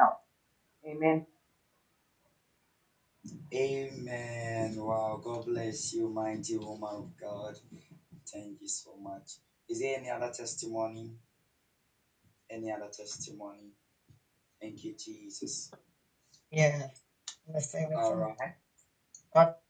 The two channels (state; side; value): identical; both; correlation 1.00